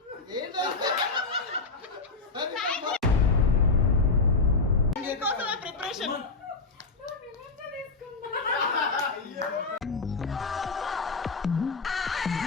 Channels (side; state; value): right; quieter; 4.0 dB